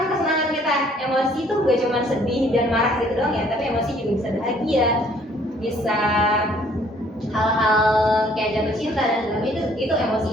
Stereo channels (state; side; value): normal; both; correlation 0.60